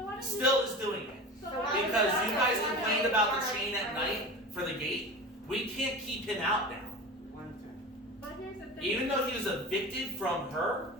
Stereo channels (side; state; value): both; normal; correlation 0.31